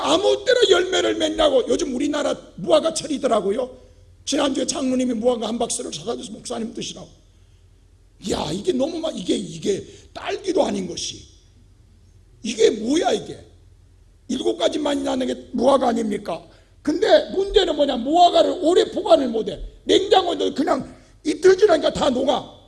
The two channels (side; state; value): both; identical; correlation 1.00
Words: 아무 때나 열매를 맺냐고. 요즘 우리나라 무화과철이더라고요. 지난주에 장로님이 무화과 한 박스를 사다 줘서 목사님 드시라고. 야, 이게 너무 막 이게 딸기도 아닌 것이, 이게 뭐야 이게. 7가지만이 나는 게 무화과 아닙니까? 근데 문제는 뭐냐, 무화과를 오래 보관을 못해. 냉장고에 그냥 이틀 지나니까 다 녹아.